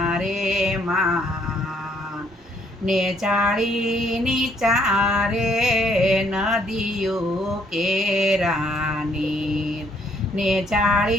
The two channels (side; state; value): both; normal; correlation 0.67